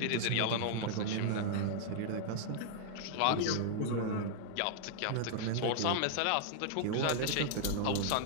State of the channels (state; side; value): different; both; correlation -0.01